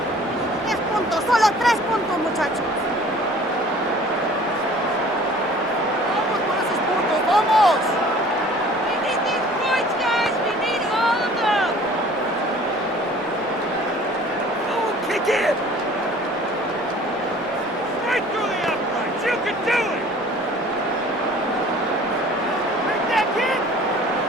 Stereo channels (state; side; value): normal; both; correlation 0.49